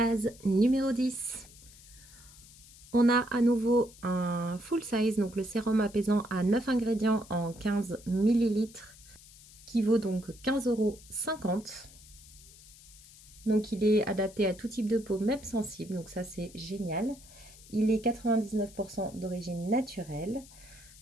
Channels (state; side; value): noise; left; hiss, 21 dB below the sound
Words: numéro 10. On a à nouveau un full size, donc le sérum apaisant à 9 ingrédients en 15 millilitres, qui vaut donc 15,50 €. Donc il est adapté à tout type de peau, même sensible, donc ça c'est génial. Il est 99% d'origine naturelle.